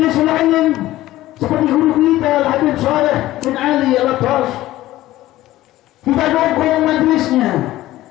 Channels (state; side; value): quieter; right; 15.8 dB